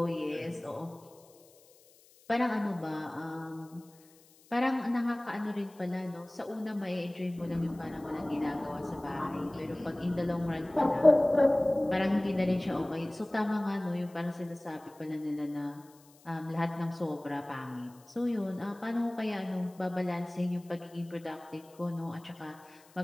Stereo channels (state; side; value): noise; left; hiss, 27 dB below the sound